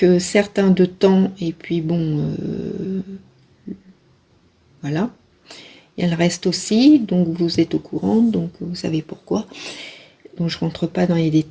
certain de temps, et puis bon, voilà. Il y a le reste aussi, donc vous êtes au courant, donc vous savez pourquoi. Donc je rentre pas dans les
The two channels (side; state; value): both; identical; correlation 1.00